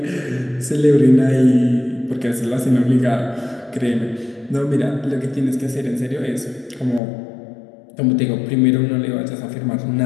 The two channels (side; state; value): right; drops out; at 7.0 s